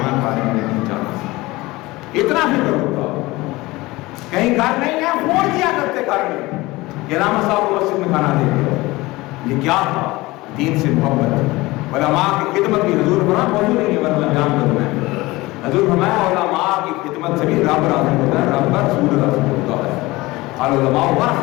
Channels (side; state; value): right; quieter; 20.6 dB